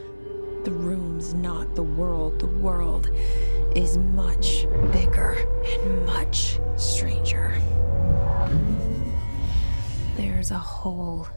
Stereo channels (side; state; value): both; inverted; correlation -1.00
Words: The room's not the world. The world is much bigger and much stranger. There's a hole